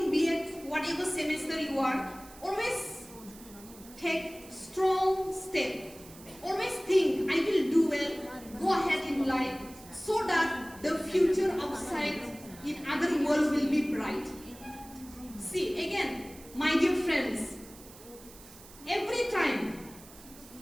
B.Ed, whatever semester you are, always take strong step. Always think, I will do well, go ahead in life, so that the future outside in other world will be bright. See, again, my dear friends, every time,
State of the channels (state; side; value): noise; right; hiss, 20 dB below the sound